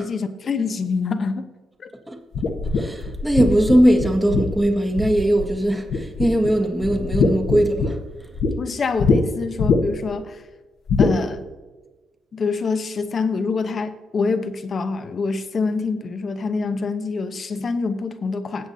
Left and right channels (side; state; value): both; normal; correlation 0.87